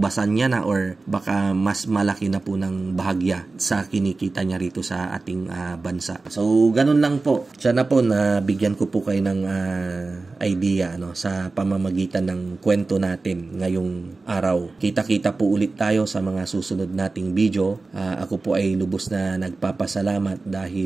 niya na or baka mas malaki na po ng bahagya sa kinikita niya rito sa ating bansa. So, ganun lang po. Sana po na bigyan ko po kayo ng idea sa pamamagitan ng kwento natin ngayong araw. Kita-kita po ulit tayo sa mga susunod nating ating video. Ako po ay lubos na nagpapasalamat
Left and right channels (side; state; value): left; quieter; 3.7 dB